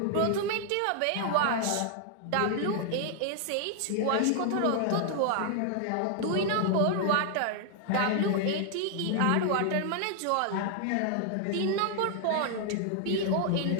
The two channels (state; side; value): different; both; correlation 0.00